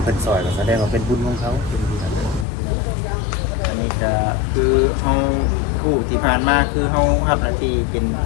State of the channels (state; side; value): drops out; right; at 2.5 s